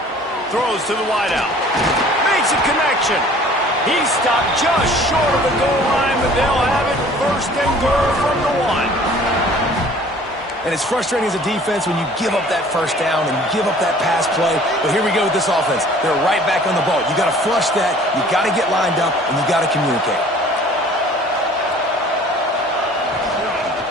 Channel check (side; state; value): both; normal; correlation 0.50